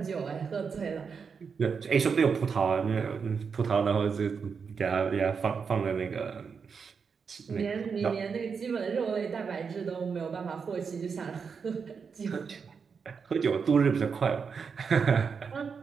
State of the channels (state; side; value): quieter; left; 5.9 dB